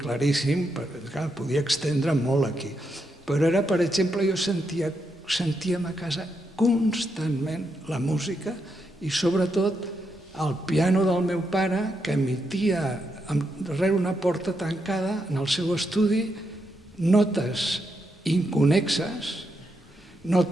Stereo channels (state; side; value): normal; both; correlation 0.82